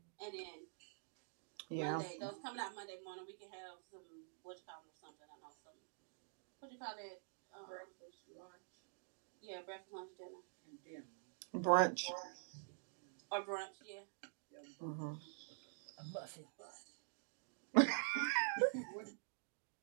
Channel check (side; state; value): left; silent; digital silence